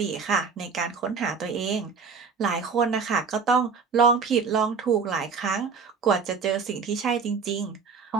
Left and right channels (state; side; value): quieter; left; 5.4 dB